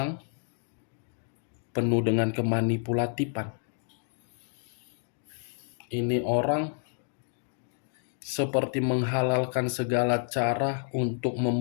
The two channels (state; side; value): silent; right; 58 dB below the other